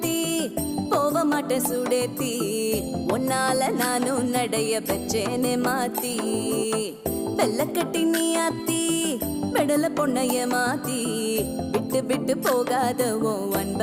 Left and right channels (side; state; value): both; identical; correlation 1.00